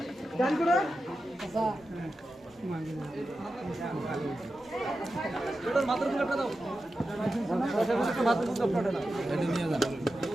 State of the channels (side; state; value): both; normal; correlation 0.91